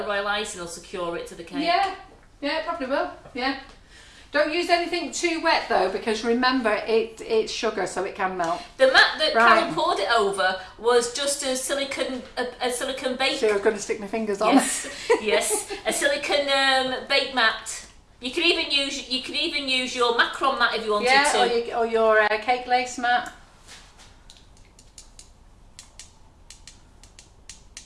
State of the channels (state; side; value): identical; both; correlation 1.00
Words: royal icing will secure it to the cake. Yeah, it probably will. Yeah. Don't use anything too wet though, because remember it's sugar, so it can melt. The mat that Carol poured it over was just a silicone bake. So I'm going to stick my fingers on. Yes, a silicone bake mat. You could even use your macaron mat if you wanted to. Yeah, or your cake lace mat.